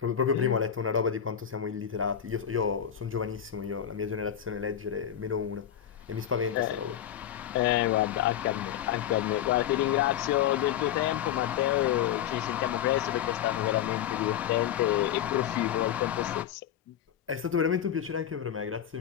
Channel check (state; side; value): quieter; right; 10.1 dB